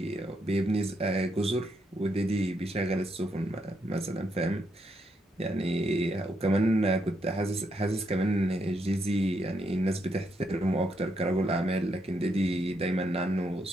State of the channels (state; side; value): normal; both; correlation 0.78